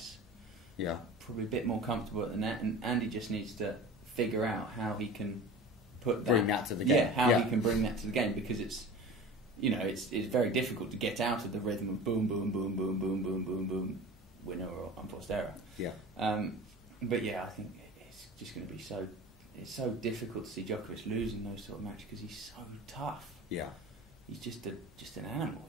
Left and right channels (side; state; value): both; normal; correlation 0.37